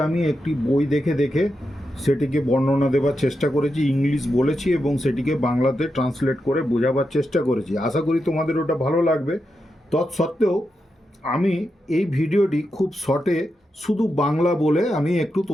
আমি একটি বই দেখে দেখে সেটিকে বর্ণনা দেওয়ার চেষ্টা করেছি, ইংলিশ বলেছি এবং সেটিকে বাংলাতে ট্রান্সলেট করে বোঝাবার চেষ্টা করেছি। আশা করি তোমাদের ওটা ভালো লাগবে। তৎসত্ত্বেও আমি এই ভিডিওটি খুব শর্টে শুধু বাংলা বলে আমি একটু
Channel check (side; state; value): both; normal; correlation 0.87